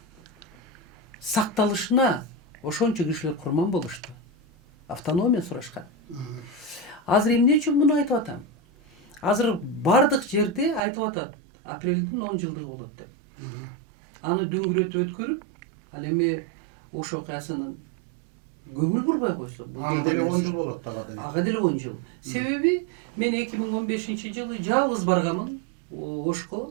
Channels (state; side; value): drops out; left; at 10.8 s